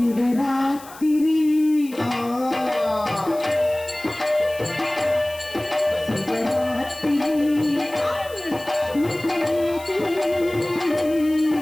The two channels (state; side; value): noise; left; hiss, 19 dB below the sound